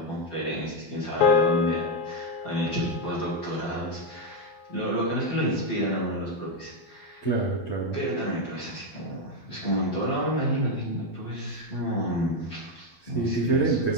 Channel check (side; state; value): right; late; 12 ms